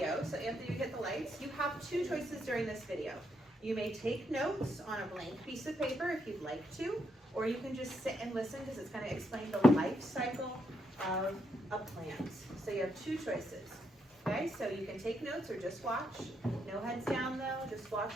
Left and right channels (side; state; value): both; normal; correlation 0.78